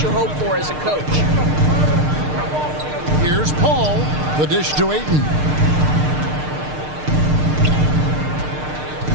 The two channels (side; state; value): left; late; 6.6 ms